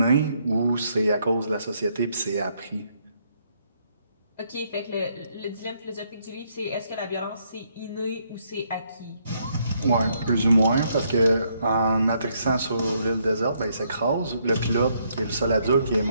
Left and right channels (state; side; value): inverted; both; correlation -0.73